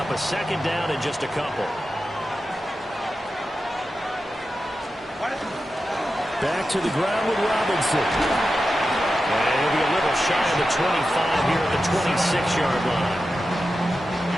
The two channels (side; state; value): both; normal; correlation 0.91